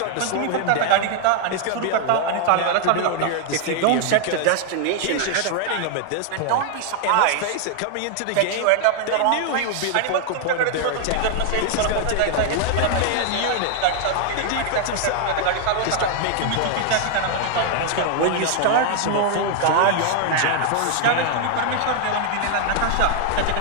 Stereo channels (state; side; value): different; both; correlation 0.00